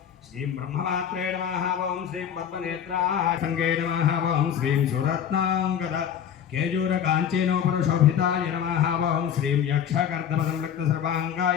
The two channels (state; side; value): quieter; right; 8.9 dB